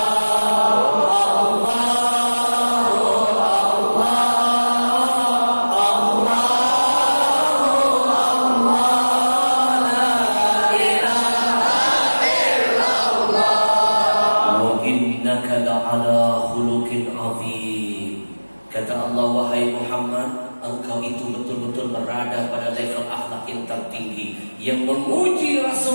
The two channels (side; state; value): both; inverted; correlation -1.00